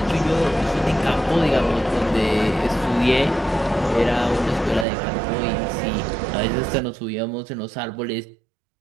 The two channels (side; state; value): left; drops out; at 4.9 s